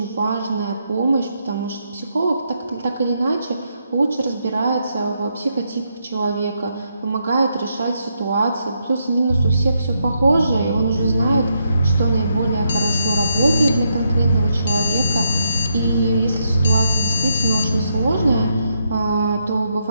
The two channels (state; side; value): inverted; both; correlation -0.79